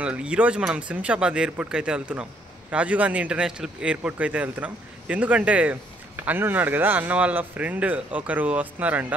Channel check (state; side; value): normal; both; correlation 0.67